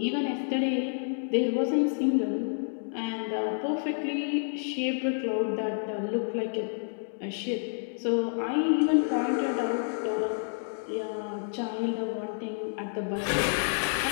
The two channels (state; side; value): silent; right; digital silence